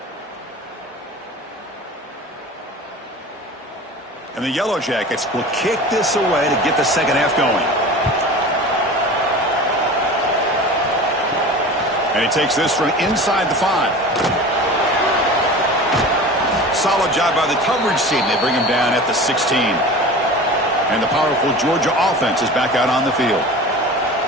And the Yellow Jackets will kick this away to get the second half going. And he takes this from inside the 5. Solid job by the coverage team. They bring him down at the 16. And the powerful Georgia offense is back out on the field.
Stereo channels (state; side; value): normal; both; correlation 0.36